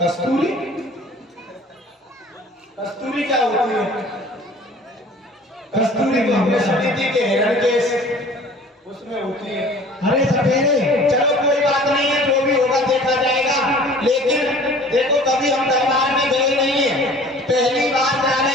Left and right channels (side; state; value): both; normal; correlation 0.47